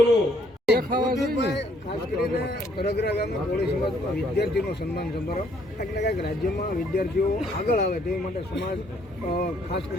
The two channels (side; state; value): both; normal; correlation 0.66